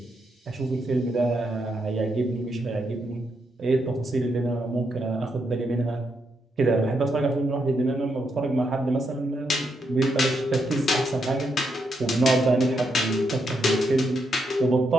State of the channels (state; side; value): normal; both; correlation 0.80